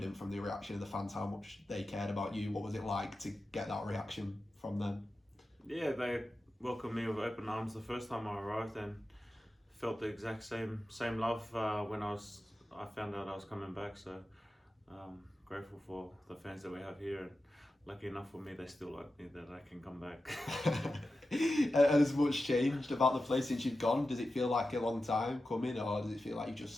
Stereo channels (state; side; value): normal; both; correlation 0.93